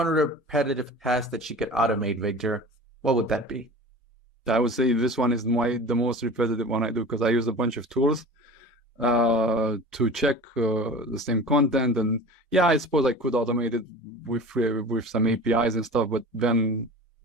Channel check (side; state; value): both; normal; correlation 0.37